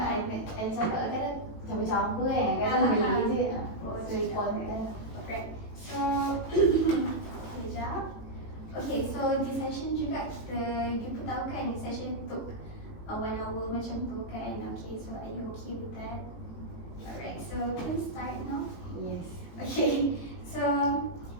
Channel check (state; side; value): late; right; 18 ms